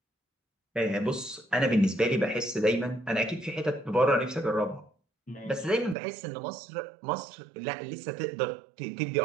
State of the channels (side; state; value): left; drops out; at 6.0 s